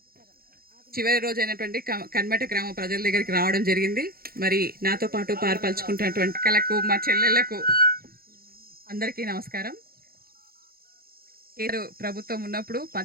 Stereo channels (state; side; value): late; left; 0.44 ms